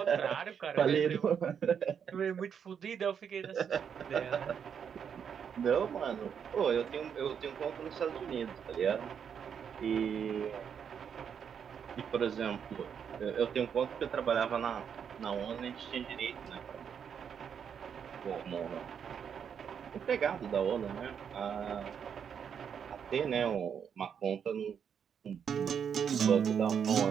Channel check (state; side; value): quieter; left; 7.6 dB